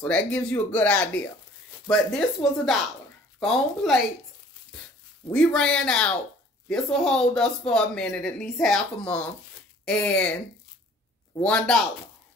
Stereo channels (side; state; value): both; normal; correlation 0.52